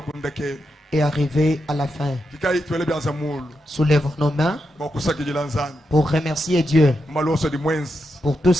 et arriver à la fin. Soulèvons nos mains pour remercier Dieu pour tout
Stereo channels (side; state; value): both; normal; correlation 0.85